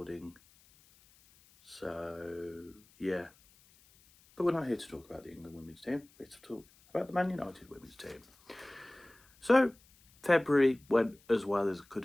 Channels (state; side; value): noise; left; hiss, 29 dB below the sound